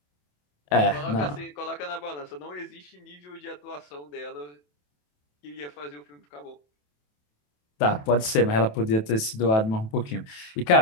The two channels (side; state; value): right; late; 27 ms